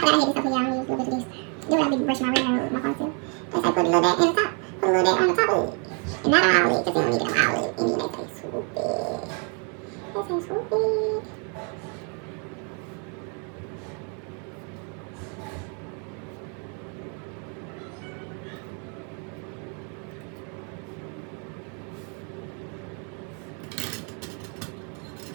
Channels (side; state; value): left; quieter; 38.3 dB